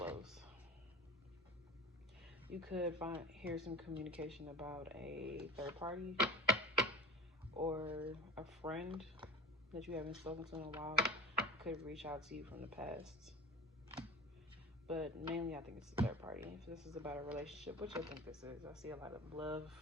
You could hear some communication about a third party or a friend that you haven't spoken to in a while could reach out to you from the past. But mainly I think it's a third party. If this is about a relationship, which I think this is, I see a lot of love,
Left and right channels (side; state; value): both; normal; correlation 0.33